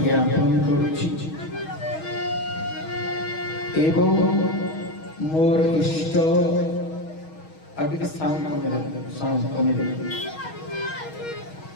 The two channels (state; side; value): late; right; 6.3 ms